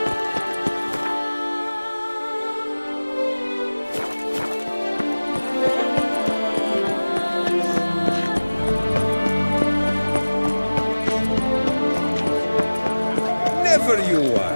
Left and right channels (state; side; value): inverted; both; correlation -1.00